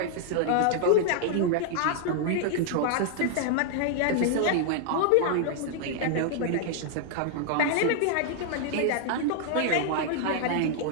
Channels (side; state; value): both; different; correlation 0.00